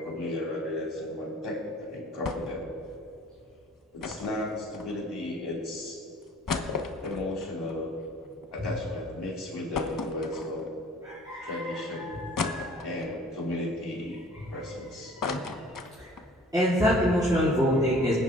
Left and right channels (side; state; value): both; normal; correlation 0.51